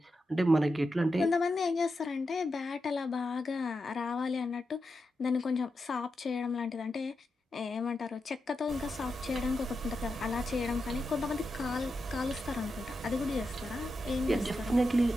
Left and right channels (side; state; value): both; normal; correlation 0.88